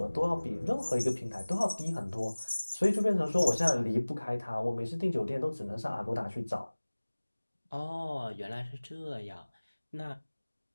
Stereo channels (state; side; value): inverted; both; correlation -1.00